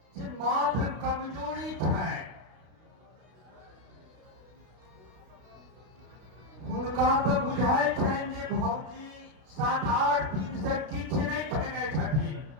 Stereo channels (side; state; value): left; late; 32 ms